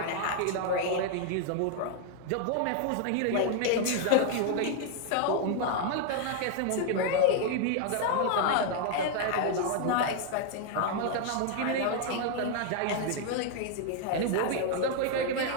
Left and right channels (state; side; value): different; both; correlation 0.00